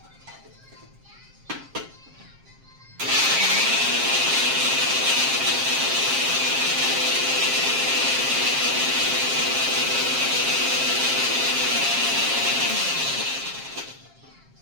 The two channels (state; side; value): late; left; 7.5 ms